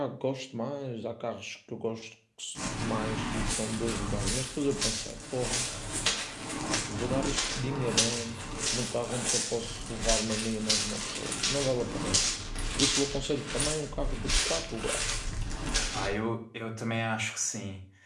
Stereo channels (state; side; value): identical; both; correlation 1.00